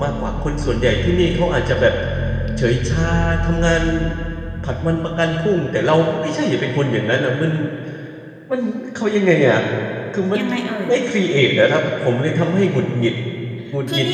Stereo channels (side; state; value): both; identical; correlation 1.00